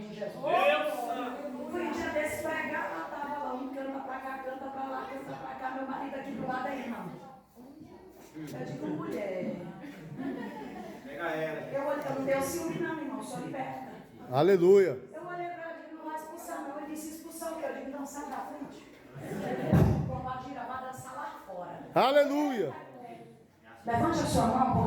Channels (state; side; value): identical; both; correlation 1.00